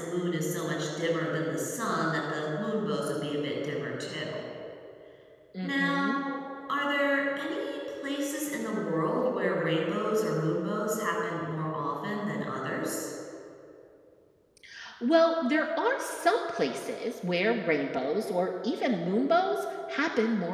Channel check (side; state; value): both; identical; correlation 1.00